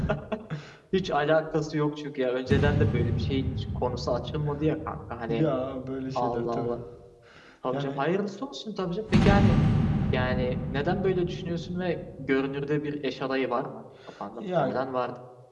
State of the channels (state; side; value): identical; both; correlation 1.00